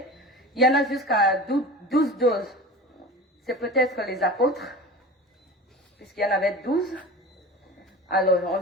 il y en a jusqu'à 12 doses. C'est peut-être les apôtres, puisqu'il y en avait 12. Alors, on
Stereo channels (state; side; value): normal; both; correlation 0.34